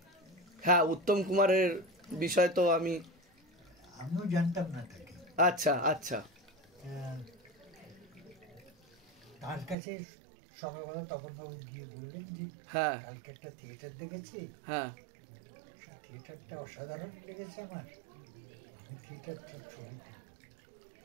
হ্যাঁ, উত্তম কুমারের বিষয় তো আমিও জানতাম না তাকে। আচ্ছা আচ্ছা। তার কাছে সকালবেলা তখন বাবু গিয়ে বললেন যে হ্যাঁ কালকে একটা থিয়েটার দেখেছি, হ্যাঁ থিয়েটারটা অসাধারণ লেগেছে আমার, আমি থিয়েটারের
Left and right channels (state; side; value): drops out; left; at 9.8 s